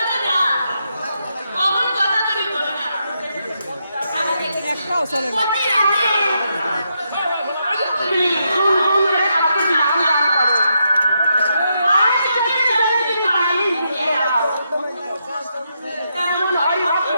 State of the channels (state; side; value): inverted; both; correlation -0.81